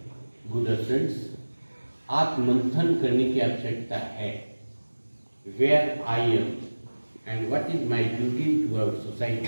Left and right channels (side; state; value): both; inverted; correlation -1.00